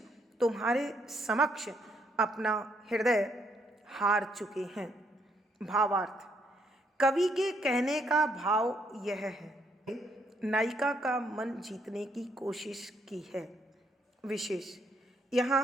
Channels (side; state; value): both; normal; correlation 0.72